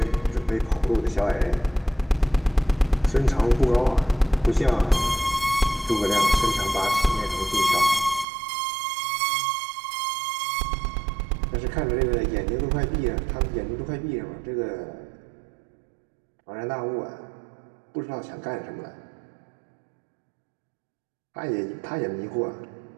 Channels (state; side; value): drops out; left; at 8.2 s